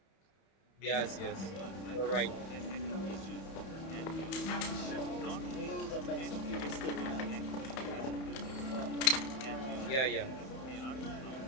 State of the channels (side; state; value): right; late; 31 ms